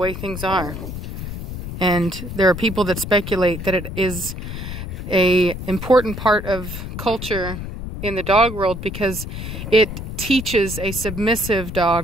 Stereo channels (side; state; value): left; noise; rumble, 7 dB below the sound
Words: things are. And there are people that speculate that it is an important part of culture in the dog world because it teaches a submissive